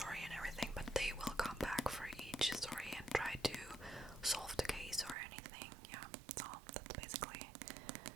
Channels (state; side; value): drops out; left; at 5.2 s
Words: and everything, but they will come back for each story and try to solve the case or anything. Yeah, so that's basically